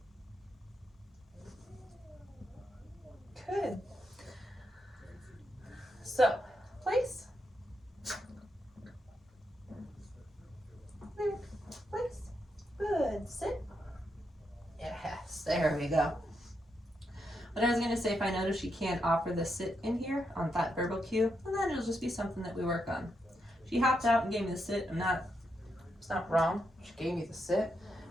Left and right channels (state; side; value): normal; both; correlation 0.82